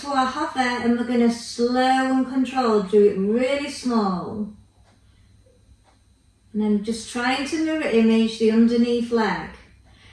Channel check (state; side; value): identical; both; correlation 1.00